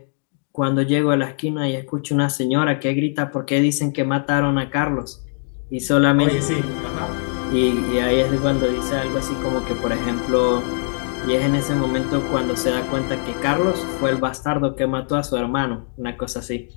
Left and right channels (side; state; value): right; silent; 57 dB below the other